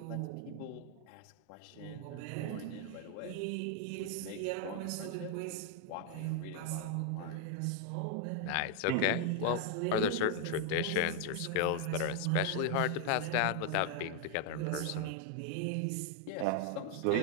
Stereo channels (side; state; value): both; different; correlation 0.00